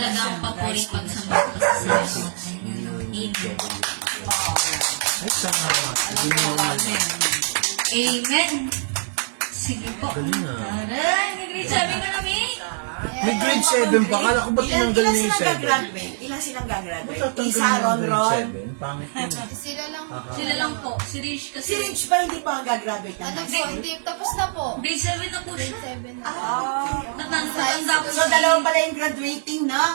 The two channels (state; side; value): silent; left; 56 dB below the other